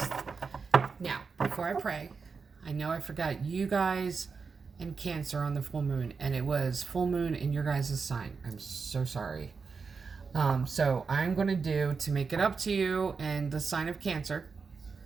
Now, before I pray, I know I forgot you guys and Cancer on the full moon, and it was full moon in your guys' sign. I'm so sorry. So I'm going to do, to make it up to you and the sign of Cancer,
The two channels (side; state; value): left; quieter; 5.1 dB